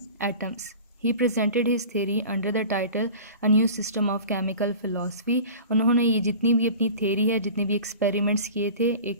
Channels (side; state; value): both; inverted; correlation -0.38